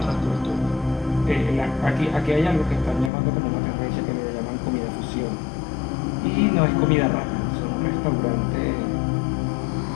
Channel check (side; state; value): right; drops out; at 3.1 s